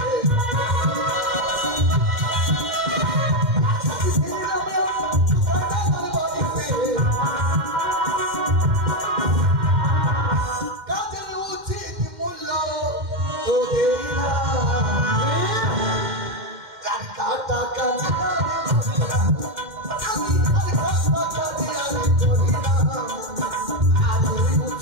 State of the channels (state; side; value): late; left; 2.1 ms